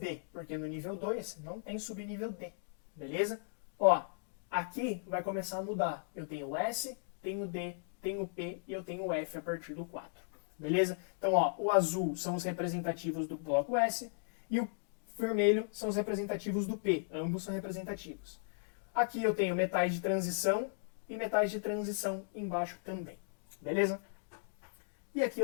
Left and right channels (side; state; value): right; silent; digital silence